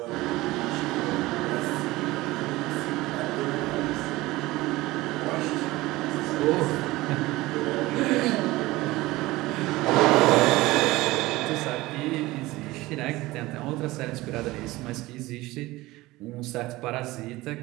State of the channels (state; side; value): quieter; left; 19.3 dB